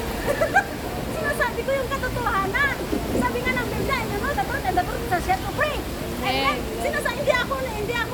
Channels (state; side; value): identical; both; correlation 1.00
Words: Sinasabi ko yung katotohanan. Sabi nga ng Biblia, you know, the truth shall set you free. And then, hindi